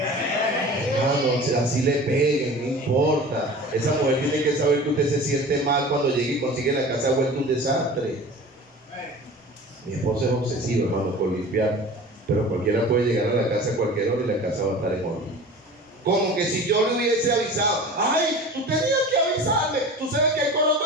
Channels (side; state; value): both; normal; correlation 0.38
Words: así le peguen, no importa. Esa mujer tiene que saber que usted se siente mal cuando llegue y consigue la casa vuelta un desastre. Mi esposo es obsesivo, hermano, por limpiar, pero cualquiera puede llegar a la casa a cualquier hora y la casa va a estar en orden. Como que si yo le hubiese avisado: ay, tú tenías que avisarme, tú sabes que hay coloto